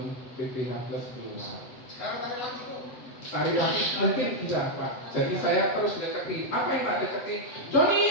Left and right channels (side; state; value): right; late; 8.0 ms